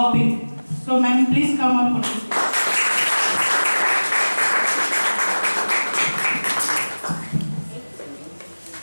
So ma'am, please come up on the stage.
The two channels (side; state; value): both; inverted; correlation -1.00